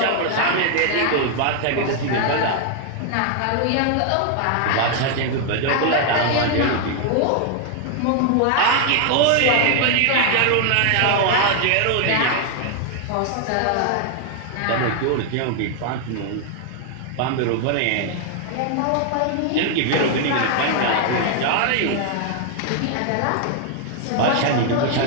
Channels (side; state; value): both; different; correlation 0.00